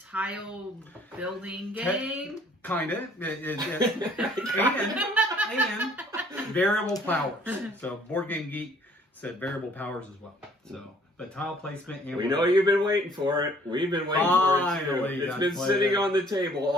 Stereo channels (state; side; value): normal; both; correlation 0.58